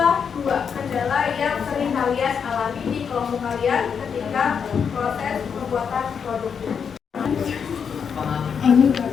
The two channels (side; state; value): right; quieter; 6.8 dB